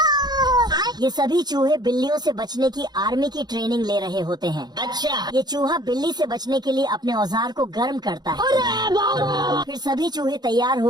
ये सभी चूहे बिल्लियों से बचने की आर्मी की ट्रेनिंग ले रहे होते हैं। ये चूहा बिल्ली से बचने के लिए अपने औजार को गर्म करता है। फिर सभी चूहे तैयार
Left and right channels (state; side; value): late; left; 0.20 ms